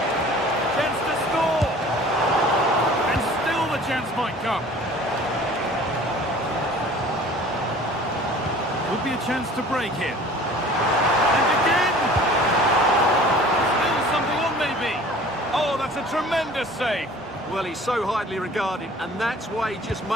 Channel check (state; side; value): normal; both; correlation 0.47